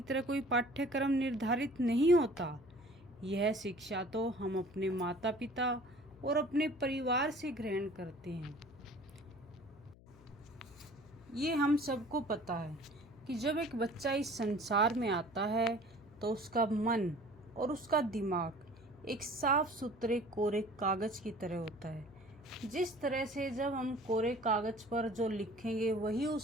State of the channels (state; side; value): noise; left; hum, 23 dB below the sound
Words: तरह कोई पाठ्यक्रम निर्धारित नहीं होता। यह शिक्षा तो हम अपने माता पिता और अपने परिवार से ग्रहण करते हैं। ये हम सबको पता है कि जब एक बच्चा इस संसार में आता है तो उसका मन और उसका दिमाग एक साफ सुथरे कोरे कागज की तरह होता है। जिस तरह से जब हम कोरे कागज पर जो लिखेंगे वही